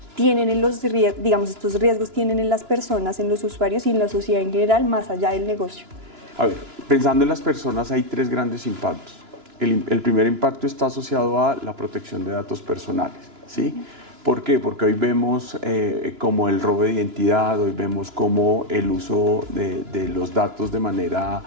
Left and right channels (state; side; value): late; left; 2.9 ms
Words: tienen estos riesgos tienen en las personas, en los usuarios y en la sociedad en general, más allá del negocio? A ver, pensando en las personas hay tres grandes impactos. El primer impacto está asociado a la protección de datos personales, ¿sí? ¿Por qué? Porque hoy vemos como el robo de identidad, hoy vemos como el uso de los datos de manera